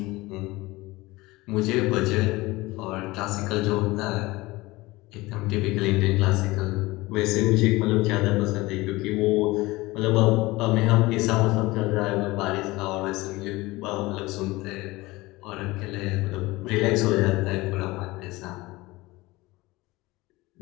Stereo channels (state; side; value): quieter; right; 20.7 dB